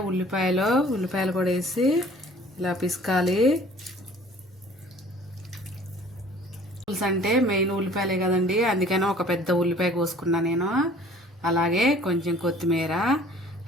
ఉల్లిపాయలు కూడా వేసి ఇలా పిసకాలి. పులుసు అంటే మెయిన్ ఉల్లిపాయలే కదండి, అందుకని ఒక పెద్ద ఉల్లిపాయ కోసుకున్నా నేను. అలాగే కొంచెం కొత్తిమీర.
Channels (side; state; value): both; normal; correlation 0.51